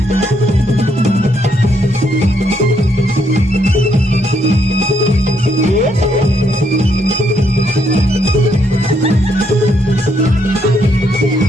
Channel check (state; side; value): normal; both; correlation 0.74